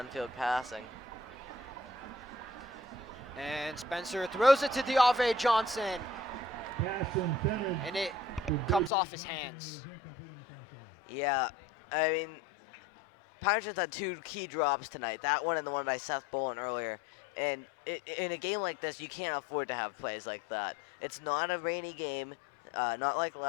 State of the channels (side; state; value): right; drops out; at 8.9 s